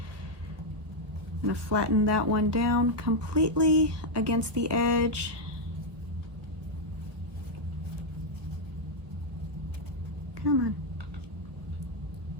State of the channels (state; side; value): late; left; 1.4 ms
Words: I'm gonna flatten that one down completely against the edge. Come on.